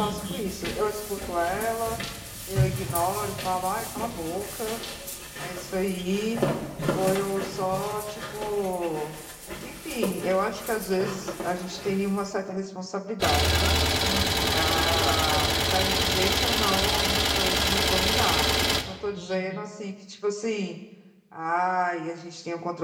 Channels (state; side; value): identical; both; correlation 1.00